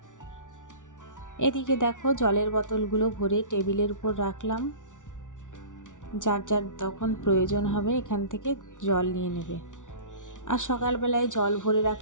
এদিকে দেখো জলের বোতলগুলো ভরে টেবিলের উপর রাখলাম, যার যার তখন প্রয়োজন হবে এখান থেকে জল নিয়ে নেবে। আর সকালবেলায় জল ভরে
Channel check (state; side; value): late; right; 0.87 ms